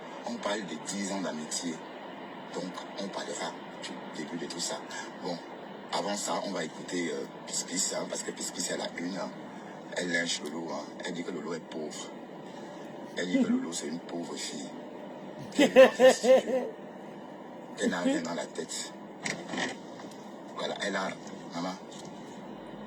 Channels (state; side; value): identical; both; correlation 1.00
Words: On parle de 10 ans d'amitié. Donc, on parlera du début de tout ça. Bon, avant ça, on va écouter Pispis, hein, parce que Pispis, elle a une. Hein, elle lynche Lolo. Hein, elle dit que Lolo est pauvre. Elle dit que Lolo, c'est une pauvre fille. Elle n'a rien dans la tête. Voilà, elle a... Maman,